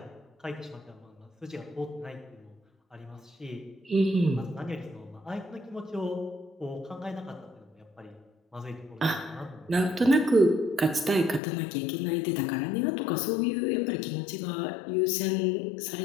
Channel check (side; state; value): right; drops out; at 11.4 s